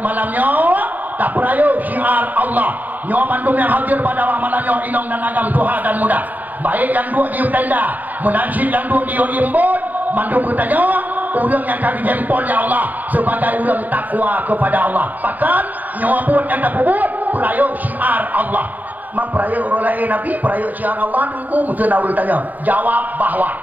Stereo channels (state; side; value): late; left; 0.082 ms